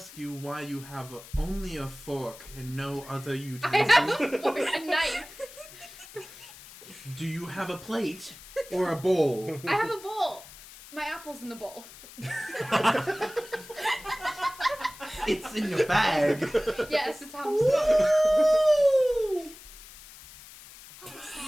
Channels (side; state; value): left; noise; hiss, 18 dB below the sound